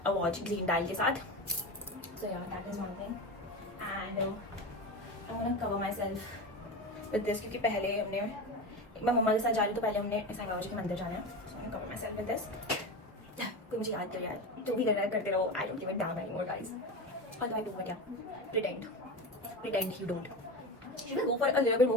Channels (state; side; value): normal; both; correlation 0.23